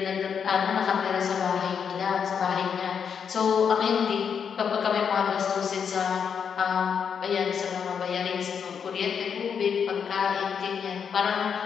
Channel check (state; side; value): quieter; right; 7.1 dB